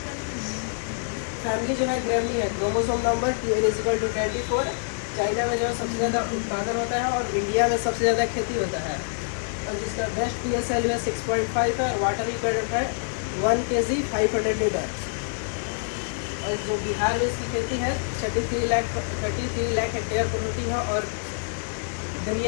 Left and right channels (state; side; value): silent; right; 58 dB below the other